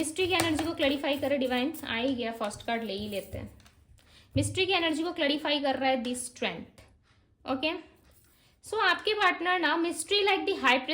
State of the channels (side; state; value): both; identical; correlation 1.00